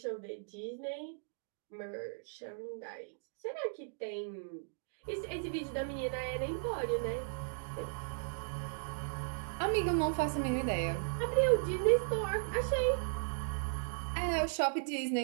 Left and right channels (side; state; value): left; silent; digital silence